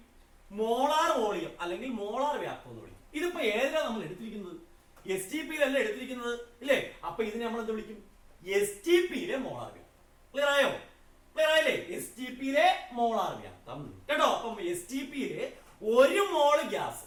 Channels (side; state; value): both; identical; correlation 1.00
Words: മോളാർ വോളിയം അല്ലെങ്കിൽ മോളാർ വ്യാപ്തം എന്ന് വിളിക്കും. ഇതിപ്പോ ഏതിലാണ് നമ്മൾ എടുത്തിരിക്കുന്നത്? STPയിലല്ല എടുത്തിരിക്കുന്നത് ഇല്ലേ? അപ്പൊ ഇതിനെ നമ്മൾ എന്ത് വിളിക്കും? STPയിലെ മോളാർ വ്യാപ്തം. ക്ലിയർ ആയോ? ക്ലിയർ ആയില്ലേ? STPയിലെ മോളാർ വ്യാപ്തം കേട്ടോ. അപ്പം STPയിലെ ഒരു മോള് ഗ്യാസ്,